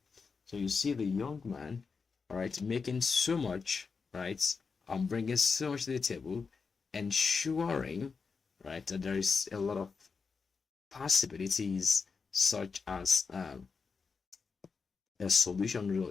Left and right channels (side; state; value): right; quieter; 5.1 dB